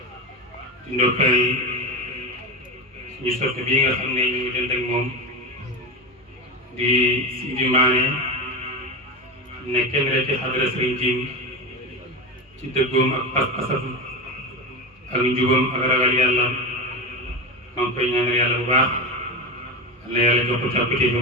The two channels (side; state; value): both; normal; correlation 0.21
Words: di ndokkeel suñu soppe bii nga xam ne ñu ngi dend ak moom di Sidi Mané ne kenn rek ci xadara Sëriñ Jim ci dëggoom ak pas-pasam ak njubam ak ragal yàlla maa ngi koy ñaanal yàlla bu baax yàlla yàlla jox ko càppite